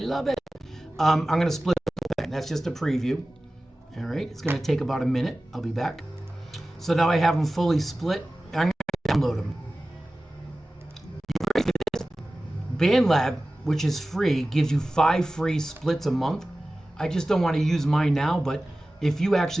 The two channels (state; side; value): normal; both; correlation 0.97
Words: it. I'm going to split the thing. That's just a preview. All right. It's going to take about a minute. I'll be back. So now I have them fully split. I'm going to download them. BandLab, which is free, gives you 5 free splits a month. I just don't want to use mine now, but if you